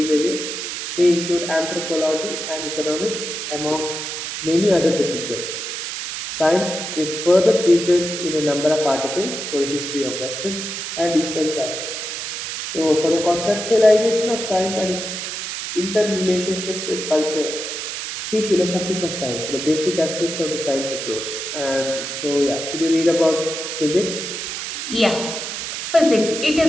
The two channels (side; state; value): right; noise; hiss, 5 dB below the sound